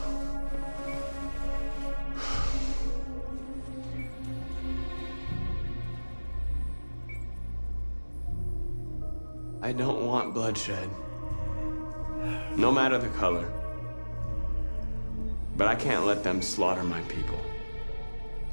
I don't want bloodshed. No matter the color. But I can't let them slaughter my people.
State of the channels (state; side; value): inverted; both; correlation -1.00